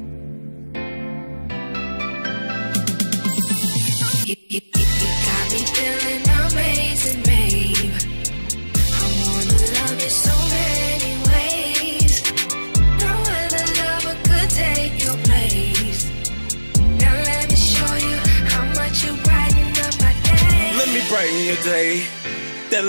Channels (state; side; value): inverted; both; correlation -1.00